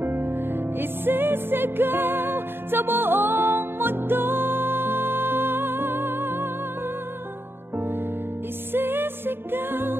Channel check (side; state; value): left; late; 0.11 ms